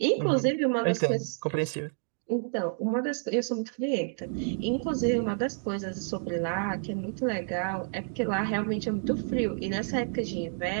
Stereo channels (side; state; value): left; silent; digital silence